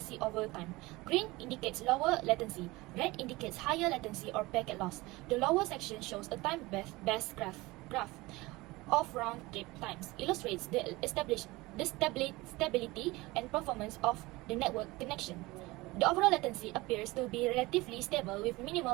over time. Green indicates lower latency, red indicates higher latency or packet loss. The lower section shows a time-based graph of round-trip times, illustrates the stability and performance of the network connection. The overall latency appears to be relatively stable with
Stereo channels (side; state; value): left; quieter; 21.3 dB